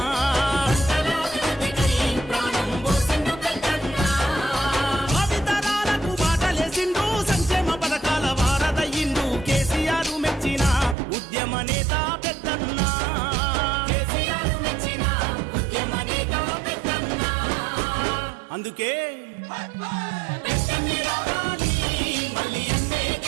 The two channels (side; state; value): left; drops out; at 11.0 s